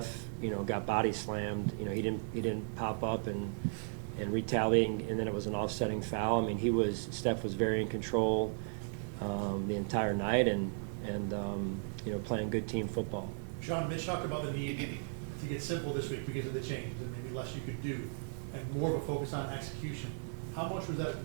got body slammed, he didn't pop up and retaliate, and then it was an offsetting foul. I mean, Steph was very in control the entire night and playing good team football. Sean, Mitch talked about the need to get simple this week because of the change, and maybe less you could do, and more of a focus on execution. How much was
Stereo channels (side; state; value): left; silent; digital silence